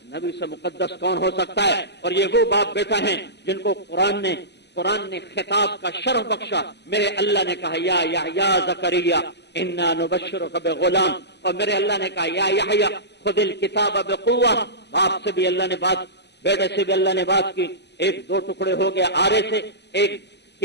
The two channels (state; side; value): late; right; 0.50 ms